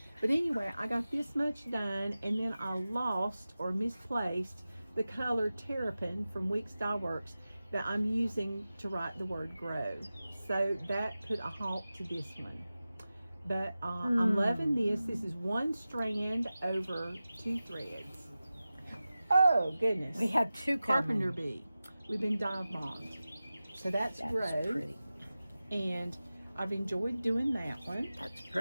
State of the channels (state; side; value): inverted; both; correlation -0.95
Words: But anyway, I got this much done, and then I lost or misplaced the color Terrapin from Weeks Dye Works that I'm using to write the word grow. So that put a halt to this one. But I'm loving this. This is 1 strand over 2 threads. Oh, goodness. We have 2 Carpenter bee. We've been dive bombed. So that's grow. pretty. And I've enjoyed doing that one. That's